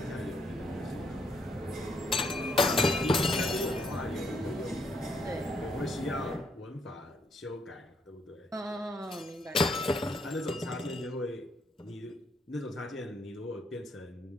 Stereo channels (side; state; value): both; normal; correlation 0.73